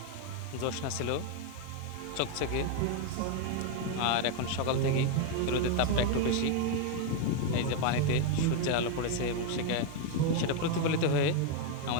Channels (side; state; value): both; different; correlation 0.01